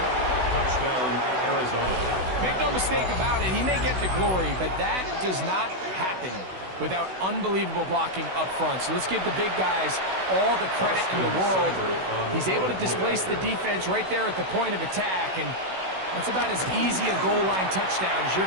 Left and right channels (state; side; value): late; left; 16 ms